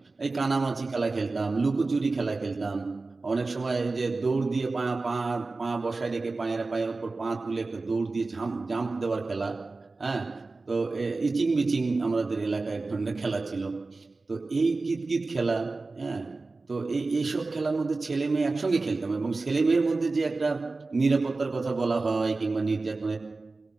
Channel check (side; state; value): left; quieter; 3.6 dB